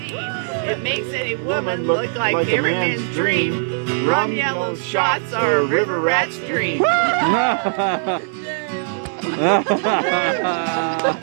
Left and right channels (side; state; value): left; silent; digital silence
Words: It makes any woman look like every man's dream. Rum yellow shots are a river rat's dream.